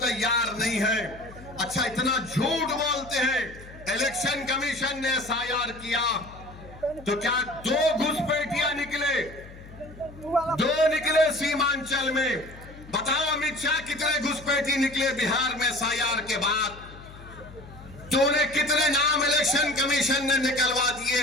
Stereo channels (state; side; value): noise; left; hum, 18 dB below the sound